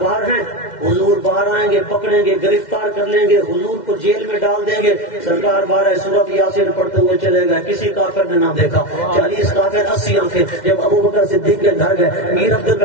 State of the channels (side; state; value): right; late; 2.1 ms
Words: ہیں, حضور باہر آئیں گے, پکڑیں گے, گرفتار کر لیں گے, حضور کو جیل میں ڈال دیں گے. سرکار 12 سورت یاسین پڑھتے ہوئے چلے گئے, کسی کافر نے نہ دیکھا. 40 کافر 80 آنکھیں. جب ابو بکر صدیق کے گھر گئے, میر عبد